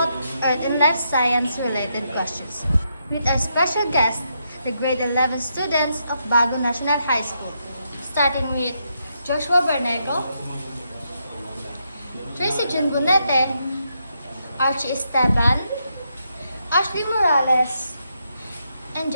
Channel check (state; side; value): inverted; both; correlation -0.80